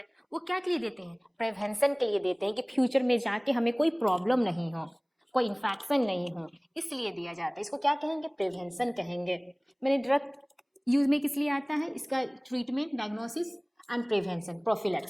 वो क्या के लिए देते हैं, प्रिवेंशन के लिए देते हैं कि फ्यूचर में जाके हमें कोई प्रॉब्लम नहीं हो, कोई इन्फेक्शन नहीं हो, इसलिए दिया जाता है। इसको क्या कहेंगे, प्रिवेंशन कहेंगे। मैंने ड्रग यूज में किस लिए आता है, इसका treatment, diagnosis and prevention,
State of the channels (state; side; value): identical; both; correlation 1.00